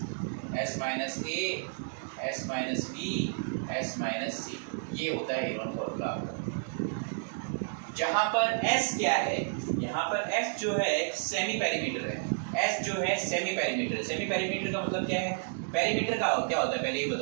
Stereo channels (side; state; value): left; silent; digital silence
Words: S minus A, S minus B, S minus C. ये होता है हेरोन फॉर्मूला। जहाँ पर एस क्या है, यहाँ पर एस जो है सेमी पेरीमीटर है। एस जो है सेमी पेरीमीटर। सेमी पेरीमीटर का मतलब क्या है, पेरीमीटर का क्या होता है पहले ये